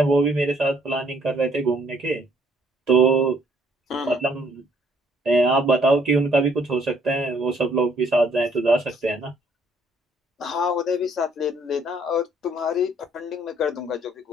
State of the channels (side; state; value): both; normal; correlation 0.65